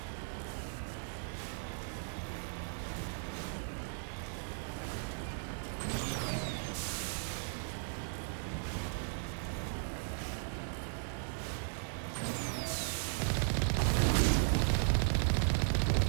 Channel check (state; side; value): silent; left; digital silence